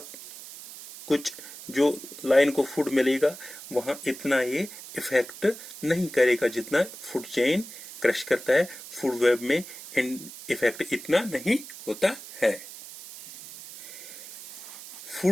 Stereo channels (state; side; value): noise; right; hiss, 14 dB below the sound